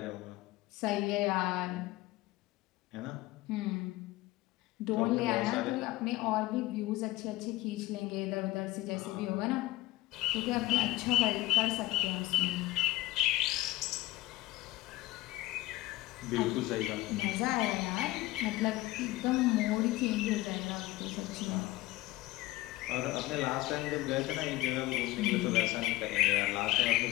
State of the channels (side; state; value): right; quieter; 18.2 dB